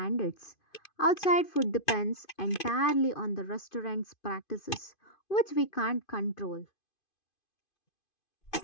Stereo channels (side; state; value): right; late; 2.5 ms